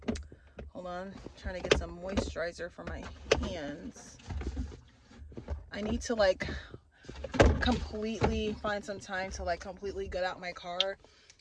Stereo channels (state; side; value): identical; both; correlation 1.00